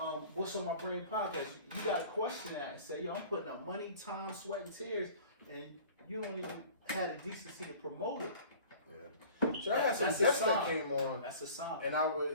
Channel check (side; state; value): both; inverted; correlation -0.45